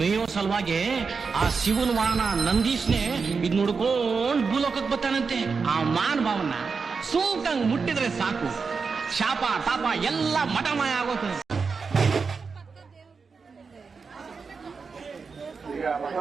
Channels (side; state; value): left; quieter; 5.0 dB